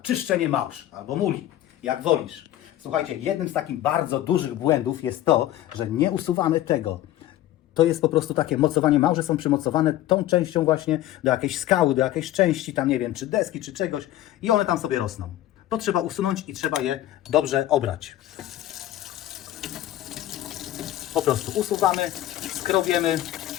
małż albo muli, jak wolisz. Słuchajcie, jednym z takich bardzo dużych błędów jest to, że nie usuwamy tego. To jest po prostu takie mocowanie. Małże są przymocowane tą częścią właśnie do jakiejś skały, do jakiejś części, tam nie wiem, czy deski, czy czegoś i one tam sobie rosną. To trzeba usunąć i trzeba je dobrze obrać. Po prostu usuwamy, skrobiemy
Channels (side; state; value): right; quieter; 13.7 dB